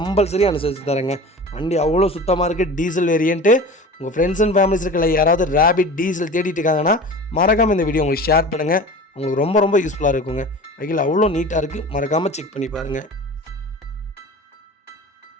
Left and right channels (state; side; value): normal; both; correlation 0.37